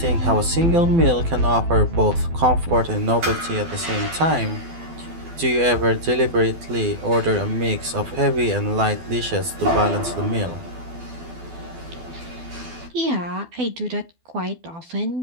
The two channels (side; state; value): left; late; 12 ms